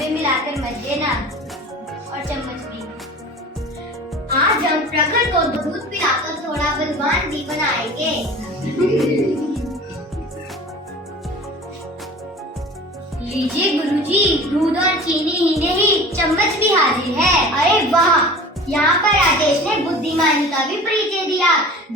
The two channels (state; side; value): normal; both; correlation 0.40